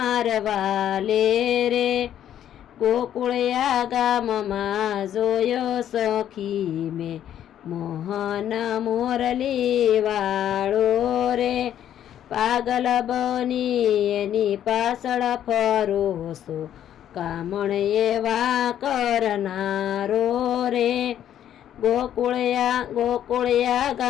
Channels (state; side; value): quieter; right; 10.7 dB